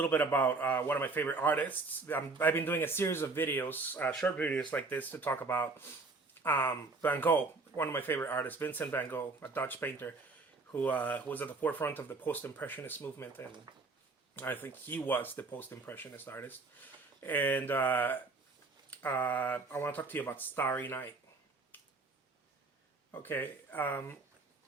bit about one of my favorite artists. I've been doing a series of videos, short videos like this, to talk about Van Gogh, one of my favorite artists, Vincent van Gogh, a Dutch painter who was at the forefront of the post-impressionist movement, and I think he was the post-impressionist artist. And I want to talk to you about Starry Night. Okay.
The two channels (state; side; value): quieter; left; 3.7 dB